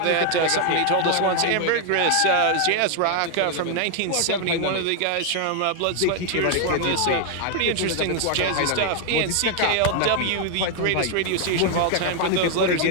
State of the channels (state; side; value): different; both; correlation 0.00